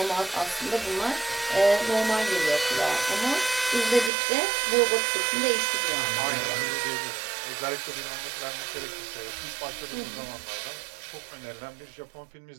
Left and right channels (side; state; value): left; drops out; at 4.1 s